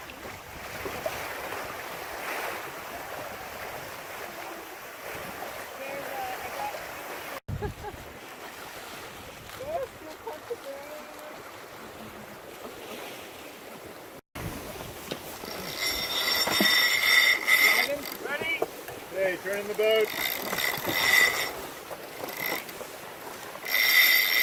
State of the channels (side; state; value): both; identical; correlation 1.00